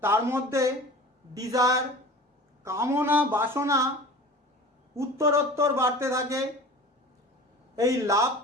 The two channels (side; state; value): both; normal; correlation 0.38